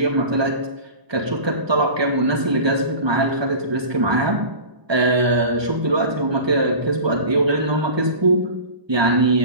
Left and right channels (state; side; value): late; left; 1.2 ms